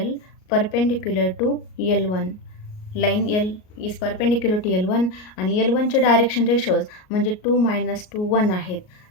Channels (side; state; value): right; late; 38 ms